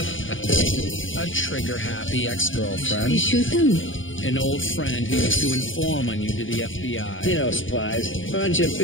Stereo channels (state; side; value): late; right; 0.57 ms